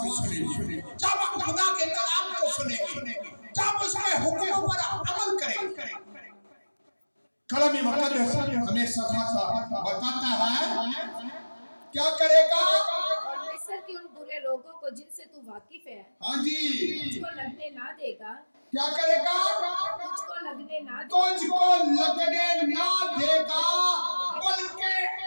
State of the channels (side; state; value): both; inverted; correlation -1.00